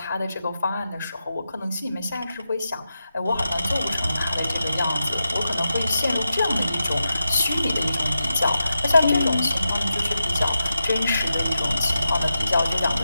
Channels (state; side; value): inverted; both; correlation -0.89